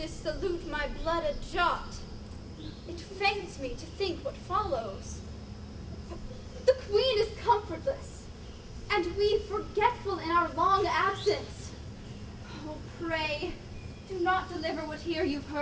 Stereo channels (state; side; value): identical; both; correlation 1.00